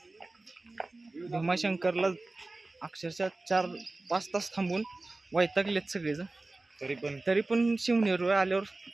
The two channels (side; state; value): left; quieter; 3.1 dB